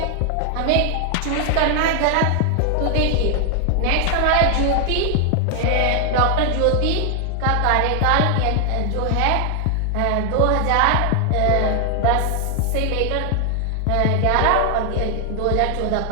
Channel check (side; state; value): both; different; correlation 0.00